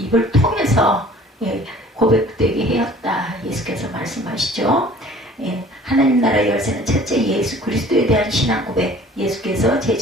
통해서 고백되게 하였다. 예수께서 말씀하시죠. 하나님 나라의 열쇠는 첫째 예수 그리스도에 대한 신앙 고백. 예수께서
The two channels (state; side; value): normal; both; correlation 0.49